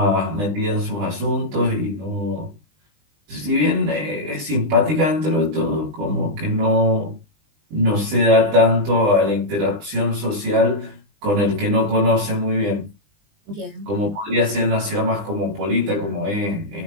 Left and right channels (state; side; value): late; left; 20 ms